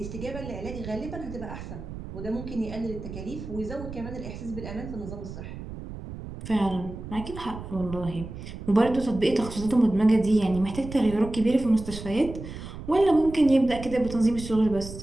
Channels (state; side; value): noise; right; rumble, 11 dB below the sound